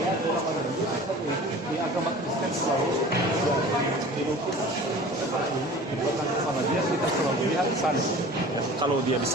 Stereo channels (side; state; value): both; normal; correlation 0.42